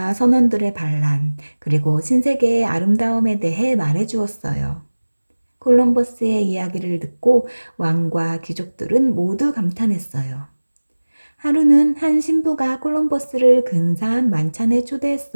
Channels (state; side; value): inverted; both; correlation -1.00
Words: 선원들의 반란, 그리고 신세계의 아름다움에 대해 말해주었어요. 콜럼버스의 이야기를 듣고 왕과 귀족들은 모두 감탄했어요. 하루는 한 신부가 콜럼버스를 근사한 만찬에